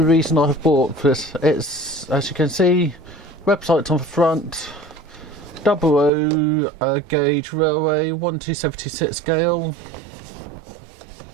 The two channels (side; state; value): left; drops out; at 6.1 s